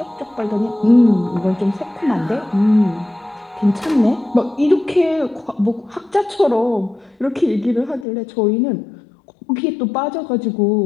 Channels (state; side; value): drops out; right; at 8.1 s